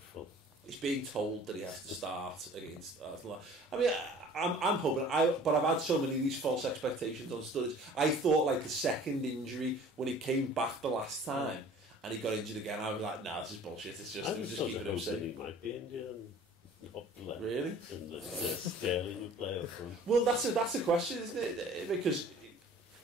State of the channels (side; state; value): both; normal; correlation 0.48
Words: He's being told that he has to start against Arsenal. I mean, I'm hoping. But I've had so many of these false expectations on Sturridge. I thought like the second injury when he came back the last time and he got injured again. I was like, nah, this is bullshit. It was just keeping him safe. He might be injured and not play. Really? And the Sterling would play up front. Well, that's a question, isn't it? Because